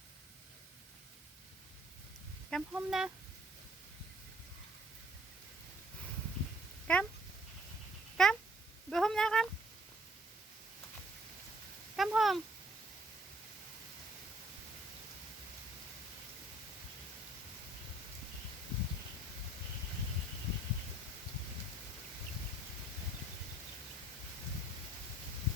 Come home na. Come. Come. Go home na, come. Come home.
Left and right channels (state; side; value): normal; both; correlation 0.60